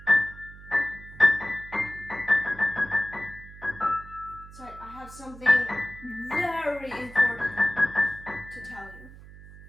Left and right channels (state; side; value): noise; right; hum, 18 dB below the sound